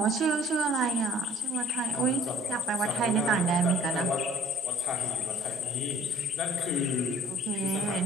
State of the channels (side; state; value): both; normal; correlation 0.54